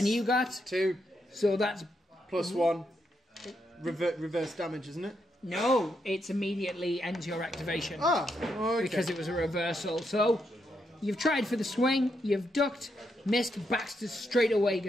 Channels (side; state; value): both; normal; correlation 0.80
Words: you got? 2. So that's... Plus 1. Reverse damage, isn't it? No, it's immediately ends your activation. Ah, okay. Because it was a reversal. So, you've tried for the swing, you've ducked, missed. Baxter's straight away